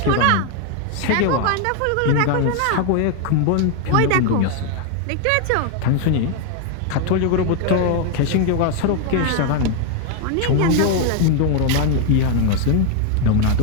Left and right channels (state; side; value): different; both; correlation 0.01